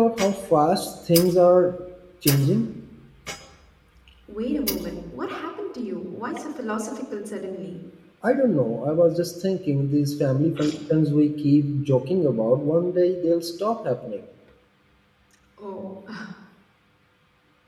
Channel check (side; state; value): both; identical; correlation 1.00